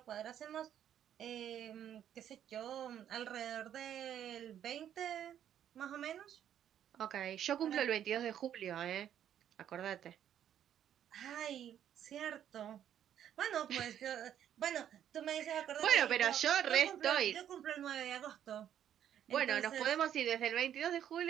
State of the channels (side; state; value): left; quieter; 10.2 dB